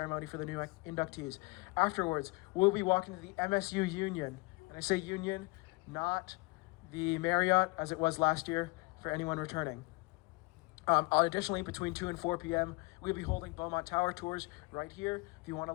for the new inductees. Afterwards, we'll be walking to the MSU Union. And I say Union, not the Marriott, as it was last year, for anyone returning. Additionally, between 2 and 4 p.m., we'll be holding Beaumont Tower tours right here if you want to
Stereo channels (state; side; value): quieter; right; 25.9 dB